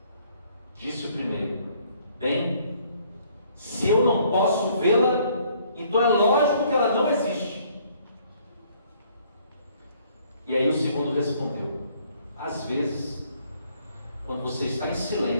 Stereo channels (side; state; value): both; inverted; correlation -0.63